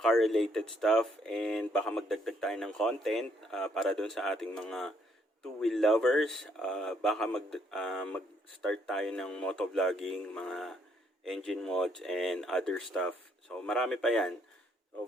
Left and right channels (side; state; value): both; normal; correlation 0.70